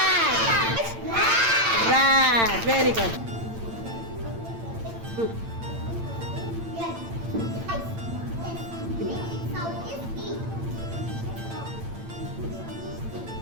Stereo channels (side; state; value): left; late; 8.8 ms